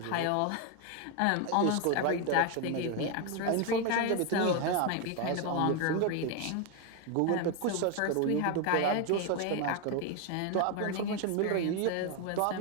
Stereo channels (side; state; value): both; different; correlation 0.01